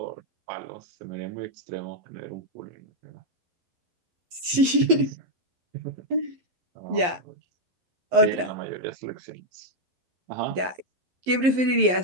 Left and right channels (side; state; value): left; late; 11 ms